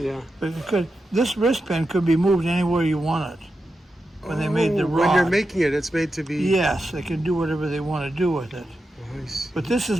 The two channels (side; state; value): both; normal; correlation 0.89